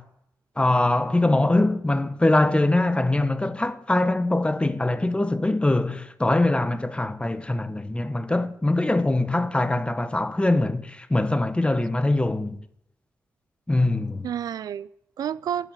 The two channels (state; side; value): normal; both; correlation 0.96